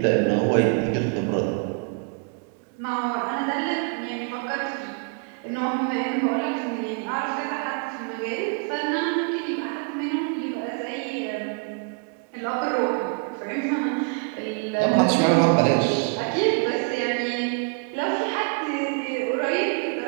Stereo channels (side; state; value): left; quieter; 39.9 dB